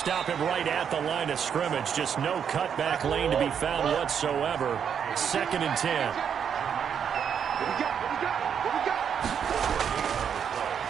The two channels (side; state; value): left; quieter; 7.8 dB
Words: him right at the line of scrimmage. Just no cutback lane to be found whatsoever. 2nd and 10.